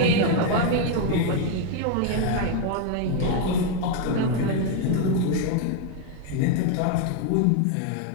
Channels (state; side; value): different; both; correlation 0.01